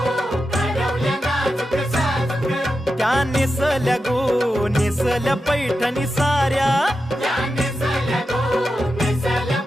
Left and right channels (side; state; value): both; normal; correlation 0.89